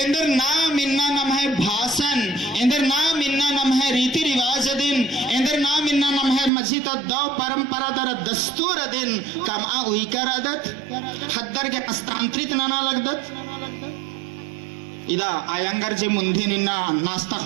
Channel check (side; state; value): left; drops out; at 6.5 s